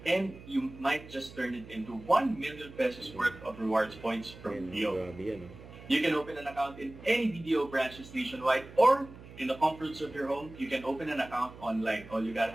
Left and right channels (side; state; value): right; noise; hum, 17 dB below the sound